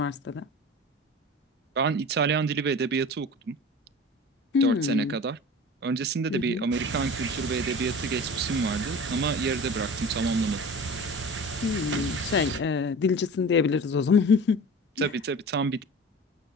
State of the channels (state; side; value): normal; both; correlation 0.36